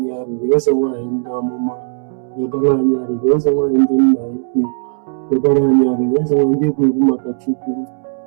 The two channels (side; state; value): left; silent; 69 dB below the other